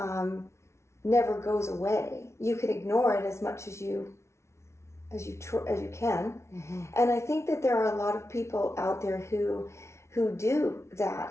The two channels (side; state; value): right; late; 0.13 ms